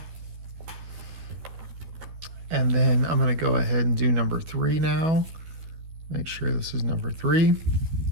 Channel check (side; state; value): left; late; 13 ms